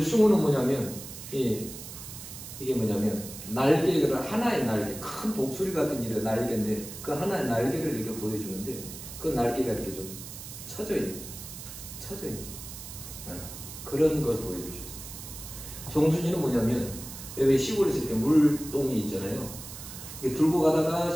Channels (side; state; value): right; noise; hiss, 12 dB below the sound